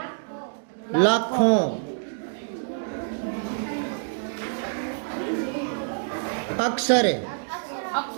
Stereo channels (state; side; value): silent; left; digital silence